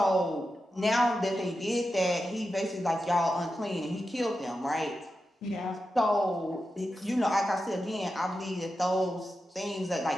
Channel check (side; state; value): both; normal; correlation 0.90